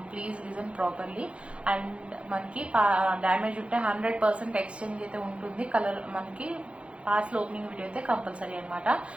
please listen properly. And మనకి damage ఉంటే 100% exchange అయితే ఉంటుంది. కలర్ మనకి పాస్ ఓపెనింగ్ వీడియో అయితే కంపల్సరీ అనమాట.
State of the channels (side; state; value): left; late; 0.060 ms